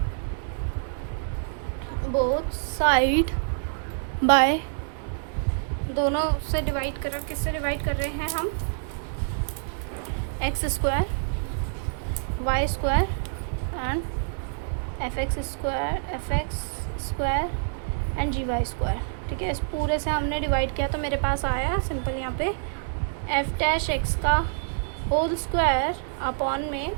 by दोनों से डिवाइड कर, किससे डिवाइड कर रहे हैं हम, x² y² and FX² and GY²। ठीक है, इस पूरे से हमने डिवाइड किया तो मेरे पास आया सिंपल यहाँ पे f'(x) का होल स्क्वायर अपॉन में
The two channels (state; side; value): silent; left; 60 dB below the other